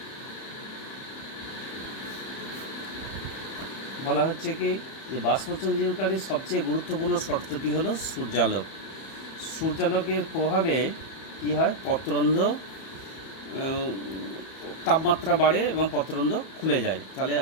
বলা হচ্ছে কি যে বাষ্পমোচনকারী সবচেয়ে গুরুত্বপূর্ণ শর্তটি হলো সূর্যালোক। সূর্যালোকের প্রভাবে কী হয়? পত্ররন্ধ্র তাপমাত্রা বাড়ে এবং পত্ররন্ধ্র খুলে যায়। তাহলে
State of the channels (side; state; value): right; late; 31 ms